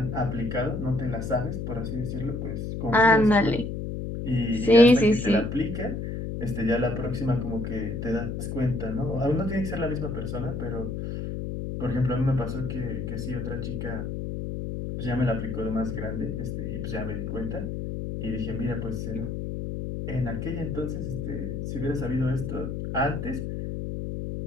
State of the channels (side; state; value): left; noise; hum, 4 dB below the sound